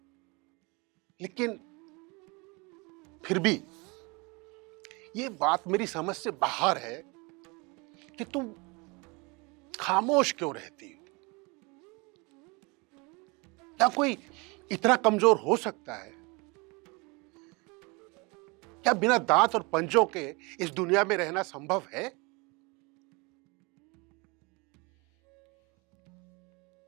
लेकिन फिर भी ये बात मेरी समझ से बाहर है कि तुम खामोश क्यों रहती हो? क्या कोई इतना कमजोर हो सकता है? क्या बिना दांत और पंजों के इस दुनिया में रहना संभव है?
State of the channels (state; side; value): quieter; left; 27.1 dB